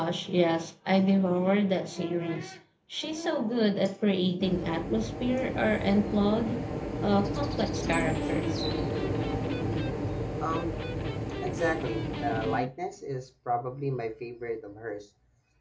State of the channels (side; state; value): both; identical; correlation 1.00